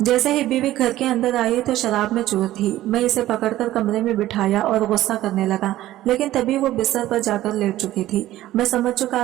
जैसे ही बीवी घर के अंदर आई तो शराब में चूर थी। मैं इसे पकड़कर कमरे में बिठाया और गुस्सा करने लगा, लेकिन तभी वो बिस्तर पर जाकर लेट चुकी थी। मैं समझ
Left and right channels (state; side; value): quieter; left; 14.7 dB